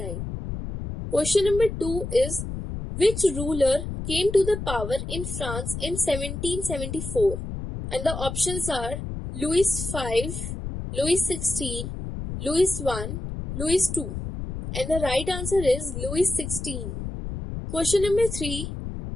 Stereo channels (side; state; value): left; noise; rumble, 6 dB below the sound